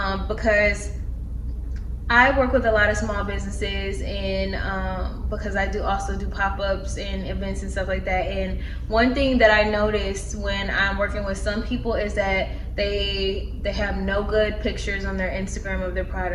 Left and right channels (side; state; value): both; identical; correlation 1.00